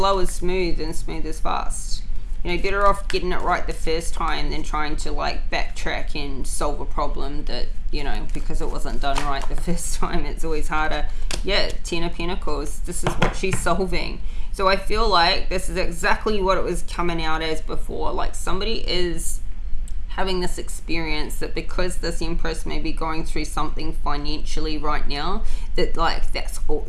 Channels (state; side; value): identical; both; correlation 1.00